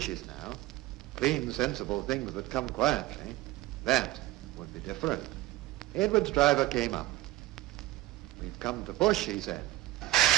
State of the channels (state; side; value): quieter; left; 17.3 dB